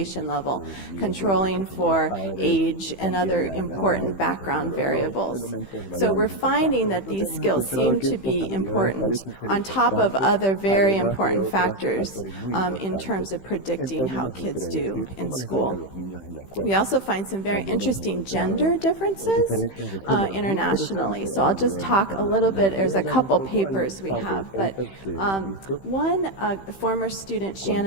nivel de educación de los padres, también la edad y controlar otros elementos variables importantes. Entonces hemos encontrado que estas habilidades parecen ser importantes, además de otros factores muy importantes en términos de predecir cómo les va a ir a los niños en la escuela. También hemos encontrado diferencias de géneros muy interesantes a nivel internacional. Voy a hablar un poco, hay un par de papers que hemos visto.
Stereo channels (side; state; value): right; late; 15 ms